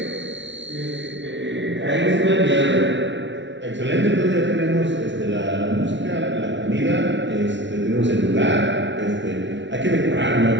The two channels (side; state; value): left; late; 0.53 ms